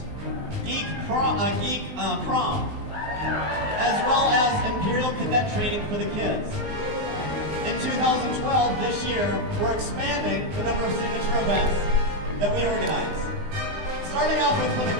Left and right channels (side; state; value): left; late; 19 ms